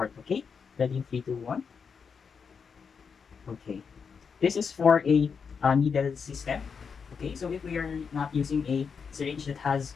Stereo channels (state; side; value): quieter; right; 6.0 dB